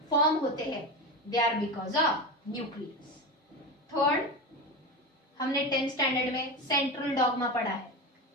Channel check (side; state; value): both; normal; correlation 0.22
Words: form होते हैं, they are because of nucleus. Third, हमने 10th standard में central dogma पढ़ा है।